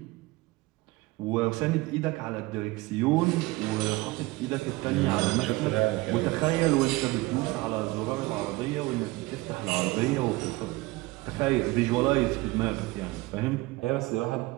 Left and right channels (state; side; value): quieter; left; 21.2 dB